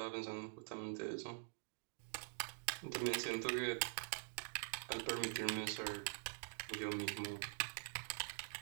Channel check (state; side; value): silent; left; digital silence